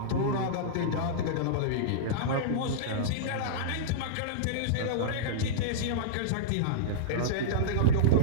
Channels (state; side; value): different; both; correlation -0.03